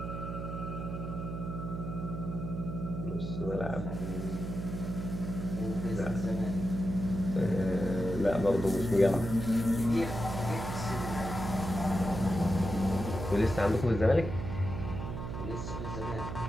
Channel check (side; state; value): right; noise; hum, 5 dB below the sound